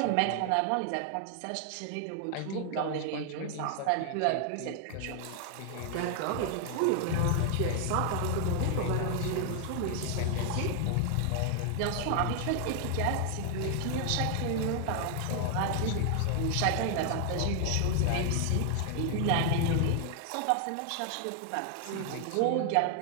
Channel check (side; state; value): both; different; correlation 0.00